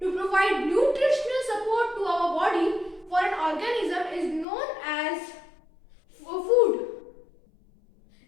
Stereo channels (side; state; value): right; drops out; at 4.5 s